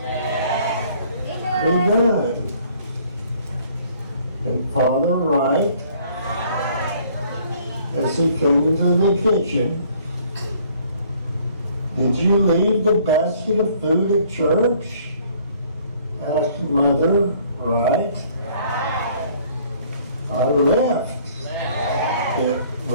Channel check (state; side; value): inverted; both; correlation -0.59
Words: be done. And Father Wright, as he came into the kitchen, "Did you leave the basket of food at church?" asked Mother Wright. "I left it,